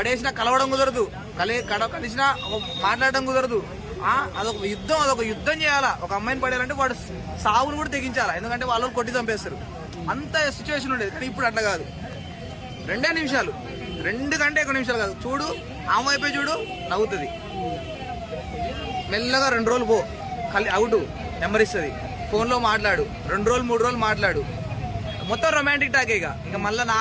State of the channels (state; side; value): identical; both; correlation 1.00